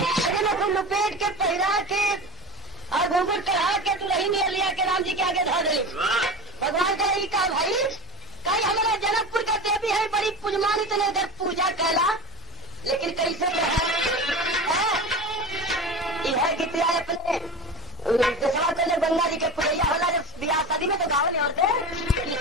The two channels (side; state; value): both; normal; correlation 0.29